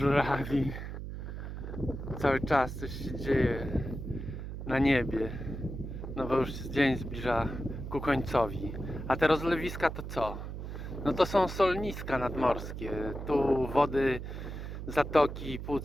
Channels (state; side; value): noise; right; hum, 7 dB below the sound